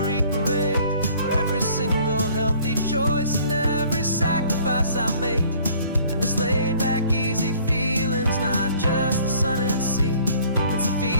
parade. For every single healthy choice and every sacrifice I made. And this laid back, easy feeling's not just the sun and sea. It's a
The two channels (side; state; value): both; inverted; correlation -0.55